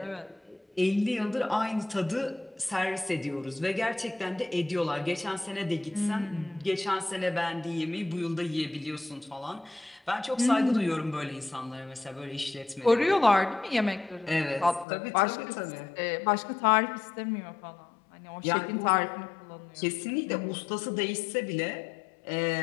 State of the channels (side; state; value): right; drops out; at 14.9 s